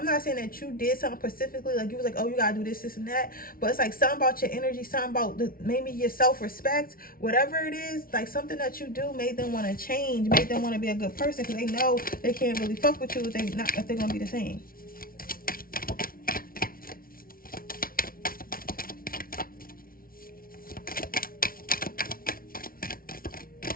not saying that you did something specifically, like you was like, oh, you gotta do this and that, but it's like something about your energy, something about maybe your self-respect, whatever it is, like something that you do made them want to change, made them want to be a good person, because they know they can't really fuck with you if they're gonna be the same.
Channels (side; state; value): right; late; 0.43 ms